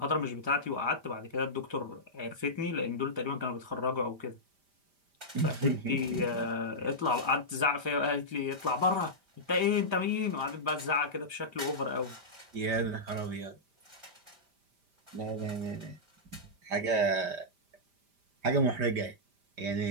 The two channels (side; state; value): left; late; 5.0 ms